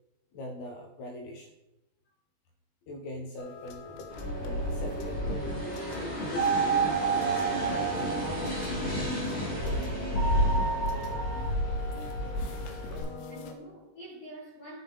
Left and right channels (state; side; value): late; right; 20 ms